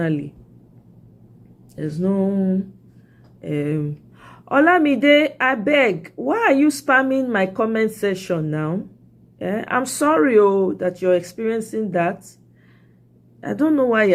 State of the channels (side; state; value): both; identical; correlation 1.00